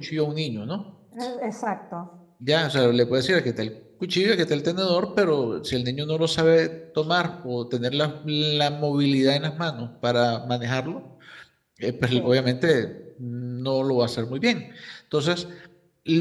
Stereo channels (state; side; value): identical; both; correlation 1.00